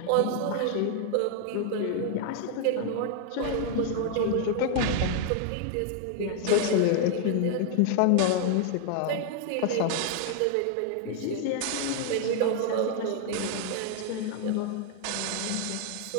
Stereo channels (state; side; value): different; both; correlation 0.00